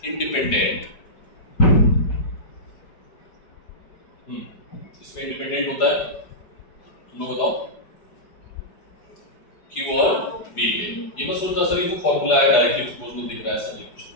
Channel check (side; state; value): right; late; 4.8 ms